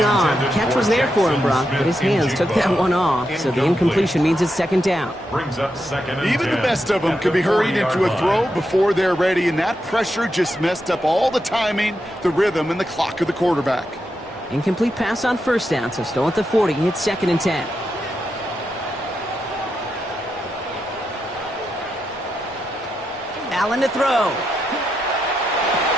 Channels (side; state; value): both; normal; correlation 0.85